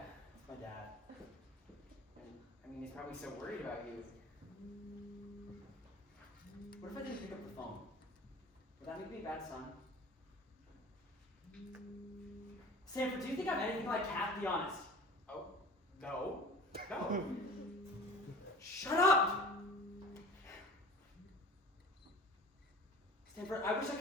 It's my dad. And, I mean, he's probably so worried about you. What if I didn't pick up the phone? Would that make me a bad son? Sanford, do you think I'm anything like Kat? Be honest. Oh, no. No. Shut up! Stanford, I wish I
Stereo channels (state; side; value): normal; both; correlation 0.41